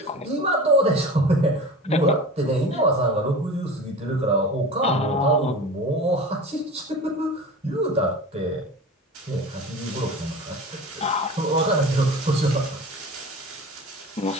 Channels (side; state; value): both; normal; correlation 0.34